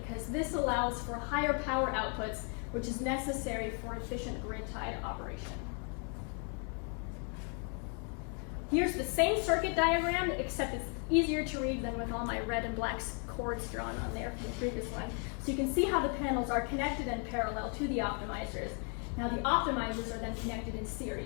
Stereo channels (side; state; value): right; quieter; 39.3 dB